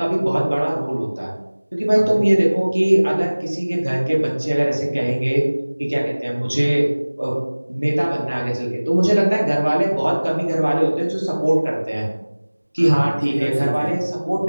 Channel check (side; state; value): both; inverted; correlation -1.00